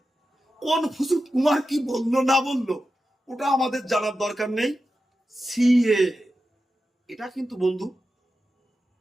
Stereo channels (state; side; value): normal; both; correlation 0.91